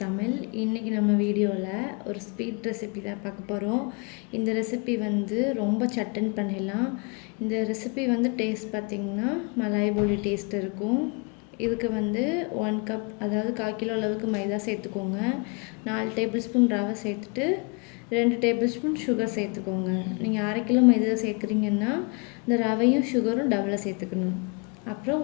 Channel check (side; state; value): right; quieter; 33.2 dB